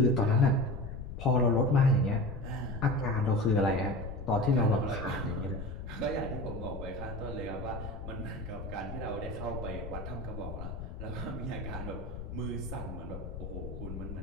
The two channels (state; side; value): noise; left; rumble, 8 dB below the sound